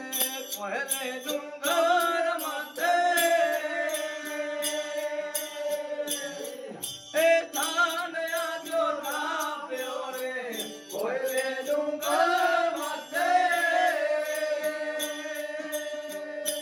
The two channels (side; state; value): both; identical; correlation 1.00